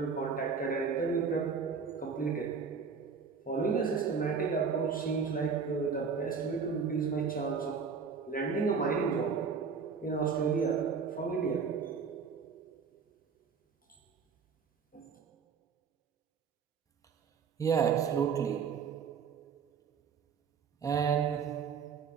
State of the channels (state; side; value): quieter; left; 5.9 dB